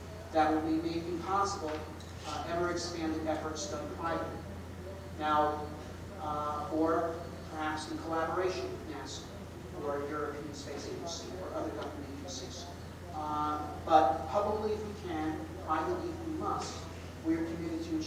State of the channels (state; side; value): identical; both; correlation 1.00